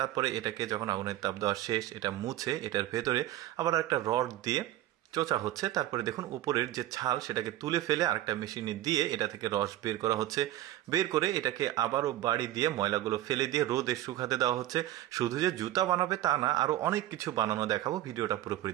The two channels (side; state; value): left; quieter; 14.2 dB